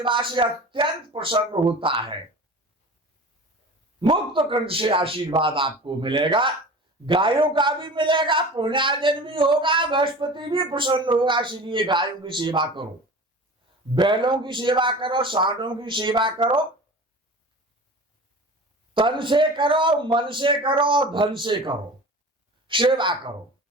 से अत्यंत प्रसन्न होता है। मुक्त कंठ से आशीर्वाद आपको मिलेगा, गायों का भी मिलेगा, पुण्यार्जन भी होगा, बृहस्पति भी प्रसन्न होगा। इसलिए गायों की सेवा करो, बैलों की सेवा करो, सांडों की सेवा करो, तन से करो, मन से करो, धन से करो, सेवा करो।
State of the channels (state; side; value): normal; both; correlation 0.37